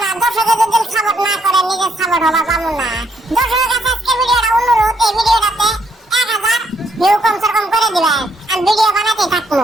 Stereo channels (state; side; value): normal; both; correlation 0.71